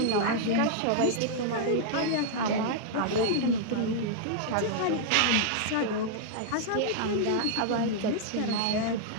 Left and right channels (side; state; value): both; different; correlation -0.01